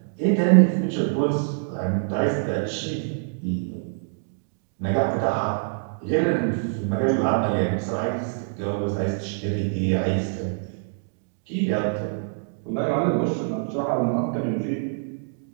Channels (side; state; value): left; silent; digital silence